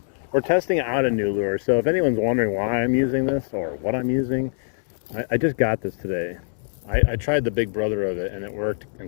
We're testing out a new lure, so if anyone's wondering why I'm using this or what I'm using, I just got this today. I tried the big brother of it and it worked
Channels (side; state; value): right; silent; 63 dB below the other